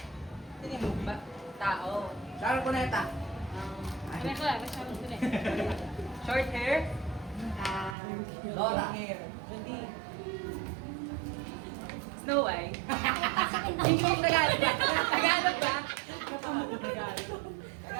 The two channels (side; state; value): left; drops out; at 8.0 s